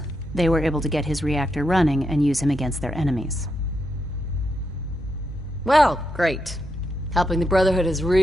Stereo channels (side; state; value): both; normal; correlation 0.83